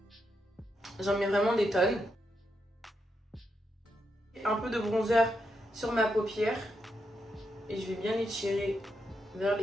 J'en mets vraiment des tonnes. Un peu de bronzer sur ma paupière. Et je vais bien étirer vers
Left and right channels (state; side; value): normal; both; correlation 0.83